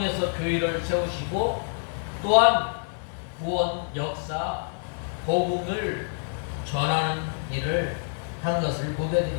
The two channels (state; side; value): silent; right; 60 dB below the other